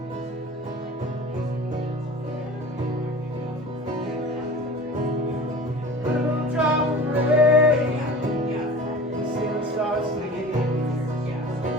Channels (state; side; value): normal; both; correlation 0.39